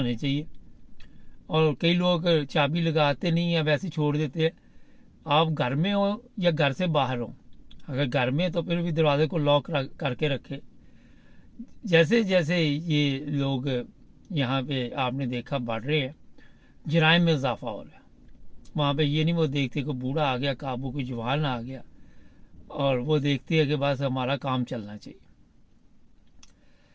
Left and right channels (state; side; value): identical; both; correlation 1.00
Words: चाहिए। और कई लोग चाबी लगाते नहीं हैं, वैसे छोड़ देते हैं। आप घर में हो या घर से बाहर हो, अगर घर में तो फिर भी दरवाजे को लॉक करके रखें। जैसे जैसे ये लोग यहाँ पे आपने देखा बढ़ रहे हैं, जराइम में इजाफा हो रहा है। वहाँ पे ये नहीं वो देखते कि बूढ़ा आ गया काबू, कोई जवान आ गया, और वो देखती है कि बस हमारा काम चलना चाहिए।